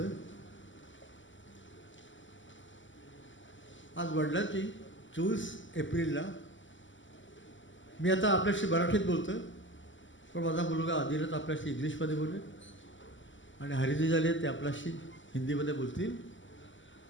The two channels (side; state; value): right; late; 0.55 ms